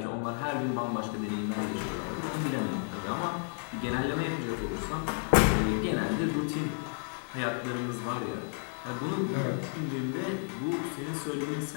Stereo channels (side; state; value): right; silent; 56 dB below the other